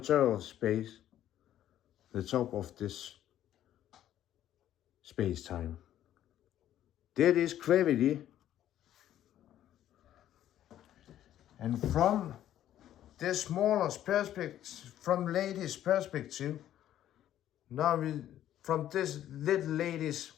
of space, the top of this space-time. That is gravity. And from this smaller perspective, from lady's perspective, now from this little lady's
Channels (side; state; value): right; quieter; 11.9 dB